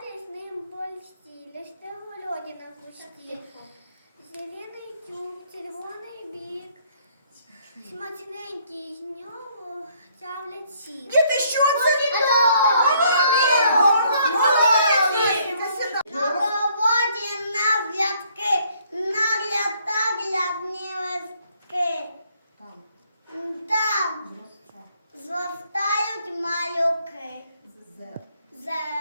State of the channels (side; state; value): both; inverted; correlation -0.66